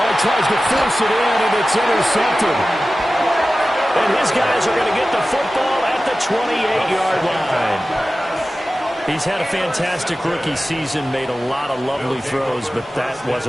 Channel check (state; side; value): normal; both; correlation 0.95